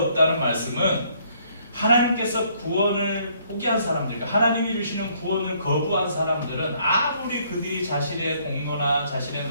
말씀은 하나님께서 구원을 포기한 사람들, 그러니까 하나님이 주시는 구원을 거부한 사람들은 아무리 그들이 자신의 공로나 자신의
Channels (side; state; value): both; inverted; correlation -0.66